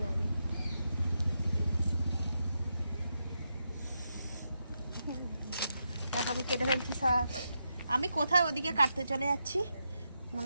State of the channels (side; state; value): both; inverted; correlation -0.85